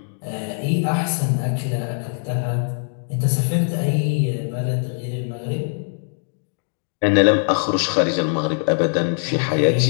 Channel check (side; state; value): right; silent; digital silence